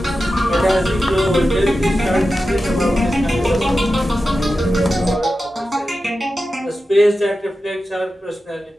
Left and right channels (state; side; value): normal; both; correlation 0.92